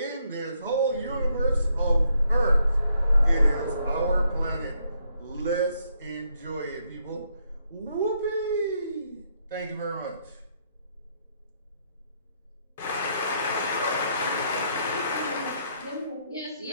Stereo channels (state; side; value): inverted; both; correlation -0.74